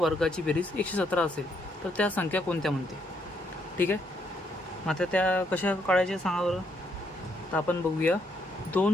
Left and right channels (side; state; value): both; normal; correlation 0.74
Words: बेरीज 117 असेल तर त्या संख्या कोणत्या म्हणते? ठीक आहे. आता त्या कशा काढायच्या सांगा बरं. तर आपण बघूया.